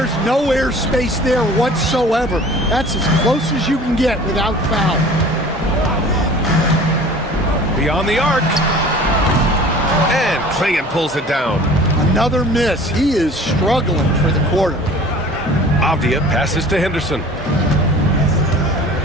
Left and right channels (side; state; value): both; normal; correlation 0.45